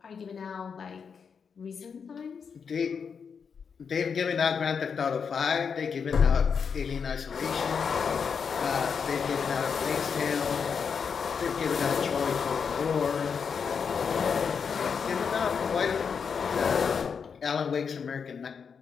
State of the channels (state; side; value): quieter; right; 6.3 dB